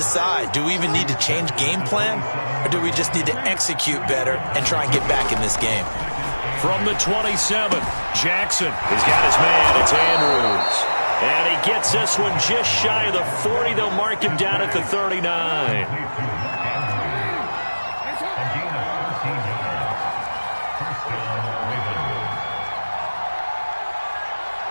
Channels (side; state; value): both; inverted; correlation -1.00